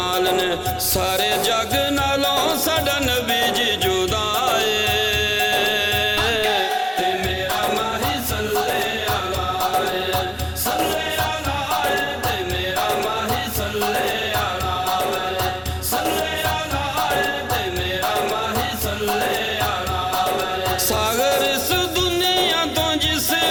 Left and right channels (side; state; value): both; identical; correlation 1.00